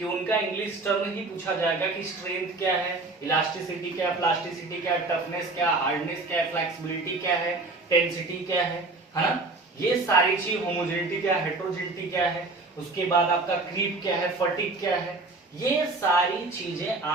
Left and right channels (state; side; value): quieter; left; 3.4 dB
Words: उनका इंग्लिश टर्म ही पूछा जाएगा कि स्ट्रेंथ क्या है, इलास्टिसिटी क्या है, प्लास्टिसिटी क्या है, टफनेस क्या है, हार्डनेस क्या है, फ्लेक्सिबिलिटी क्या है, टेंसिटी क्या है ना, ये सारी चीज, होमोजेनिटी क्या है, हेट्रोजेनिटी क्या है, उसके बाद आपका क्रीप क्या है, फटीग क्या है, ये सारी चीजें